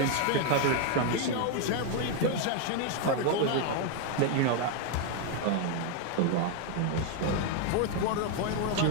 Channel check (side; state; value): both; different; correlation 0.01